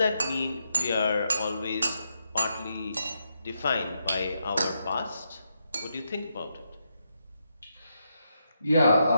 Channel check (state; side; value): inverted; both; correlation -0.82